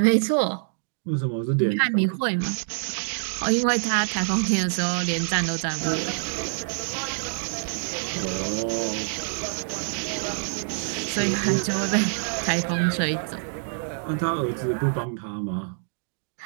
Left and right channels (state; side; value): silent; left; digital silence